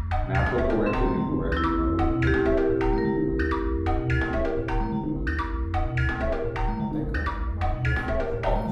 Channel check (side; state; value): both; identical; correlation 1.00